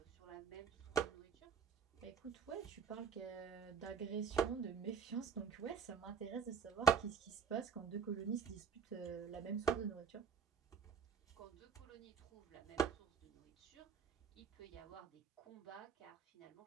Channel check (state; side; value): quieter; left; 6.5 dB